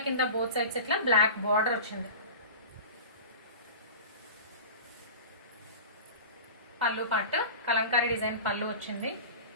కింద బోత్ సైడ్స్ ఇట్లా బ్లాక్ బార్డర్ వచ్చింది. పళ్ళు పార్ట్ కలంకారీ డిజైన్ పళ్ళు వచ్చింది.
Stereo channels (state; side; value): inverted; both; correlation -0.34